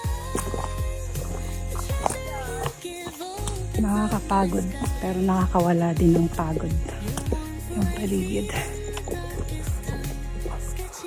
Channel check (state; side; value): identical; both; correlation 1.00